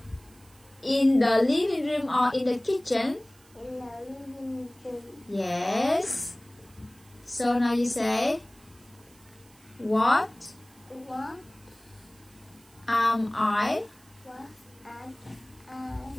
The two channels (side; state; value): right; noise; hiss, 28 dB below the sound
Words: In the living room or in the kitchen? in the living room. Yes. So now you say, what What am I? was I?